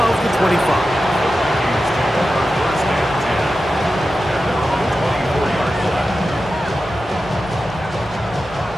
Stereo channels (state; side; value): normal; both; correlation 0.92